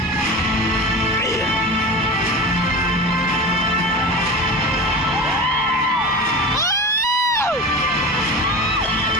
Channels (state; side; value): normal; both; correlation 0.30